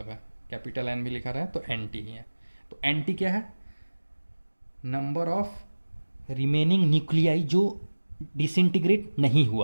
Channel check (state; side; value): inverted; both; correlation -1.00